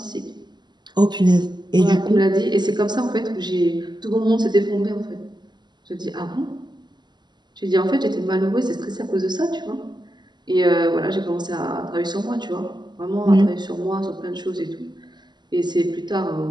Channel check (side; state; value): left; late; 0.21 ms